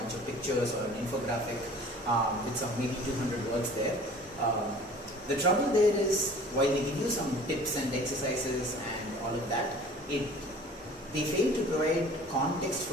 of pictures or an infographic with some maybe 200 words there. The trouble there is, while they give you some tips and exercises and all of that, they fail to provide context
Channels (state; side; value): normal; both; correlation 0.46